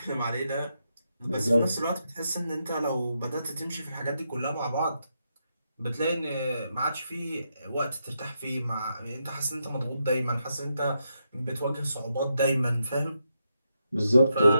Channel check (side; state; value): both; inverted; correlation -0.83